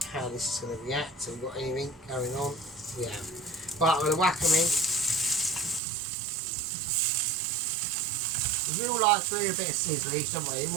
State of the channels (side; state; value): left; drops out; at 5.8 s